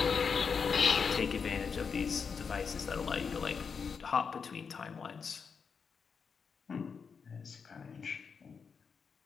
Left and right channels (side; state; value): right; quieter; 5.9 dB